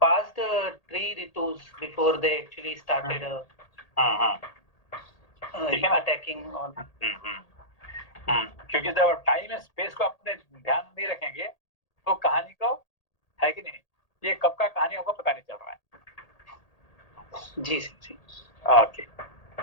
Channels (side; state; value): right; late; 1.8 ms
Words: passed 3 ritus before they actually started attacking on. क्योंकि जब टाइम एंड स्पेस को अपने ध्यान नहीं रखेंगे तो कहानी को, है कि नहीं, ये कब का कहानी होगा पता नहीं चल रहा है। जी। Okay,